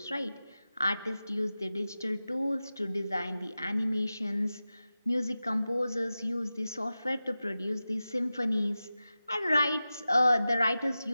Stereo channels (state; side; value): inverted; both; correlation -0.94